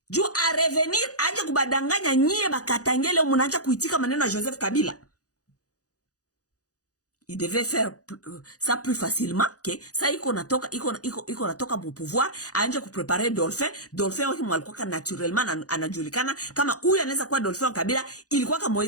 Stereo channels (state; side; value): late; right; 0.67 ms